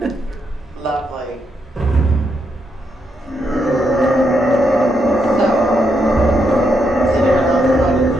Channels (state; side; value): normal; both; correlation 0.79